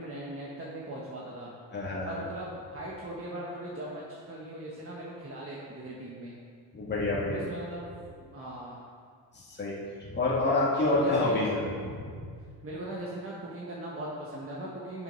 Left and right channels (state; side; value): normal; both; correlation 0.06